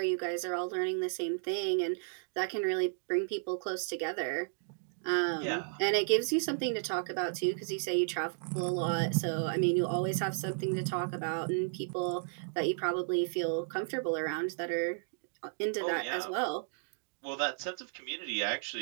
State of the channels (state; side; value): silent; left; digital silence